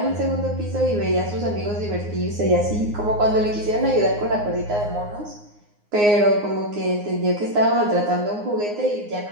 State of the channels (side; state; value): left; late; 9.6 ms